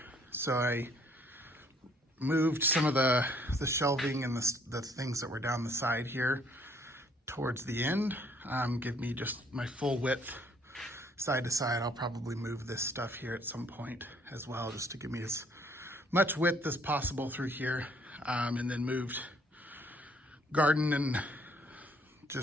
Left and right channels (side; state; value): both; normal; correlation 0.63